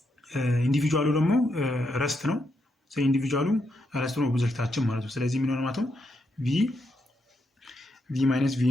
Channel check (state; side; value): normal; both; correlation 0.81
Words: ኢንዲቪጁዋሉ ደግሞ ረስት ነው። ስለዚህ ኢንዲቪጁዋሉ ረስት ነው ኦብጀክታችን ማለት ነው። ስለዚህ ምን ሆነ ማለት ነው ቪ ማይነስ ቪ